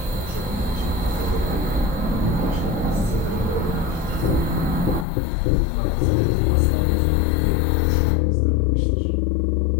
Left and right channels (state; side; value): drops out; right; at 5.1 s